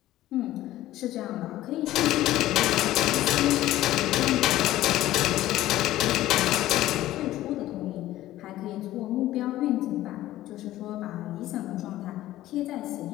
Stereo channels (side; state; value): right; quieter; 14.9 dB